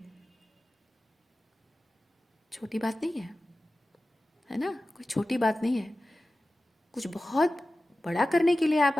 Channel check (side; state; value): both; normal; correlation 0.95